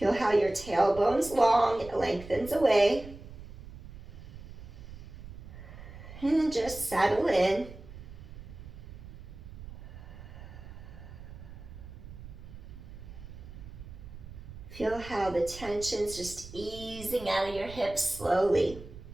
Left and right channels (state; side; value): noise; right; rumble, 14 dB below the sound